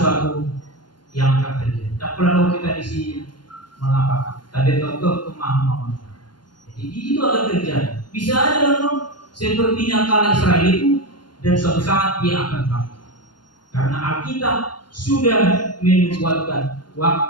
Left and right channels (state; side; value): late; right; 0.71 ms